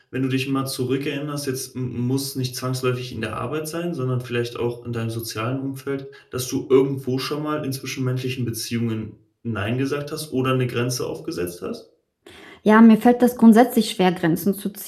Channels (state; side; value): identical; both; correlation 1.00